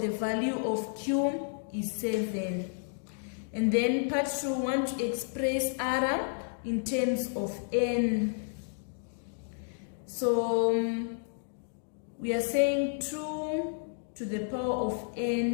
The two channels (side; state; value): right; silent; digital silence